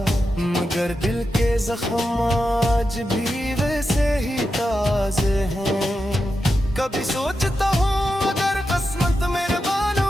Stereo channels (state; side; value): normal; both; correlation 0.89